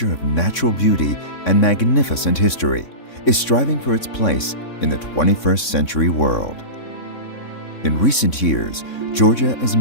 of natural beauty and magnificent history, is striving for its place in the 21st century world. In recent years, Georgia is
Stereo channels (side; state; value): right; late; 3.6 ms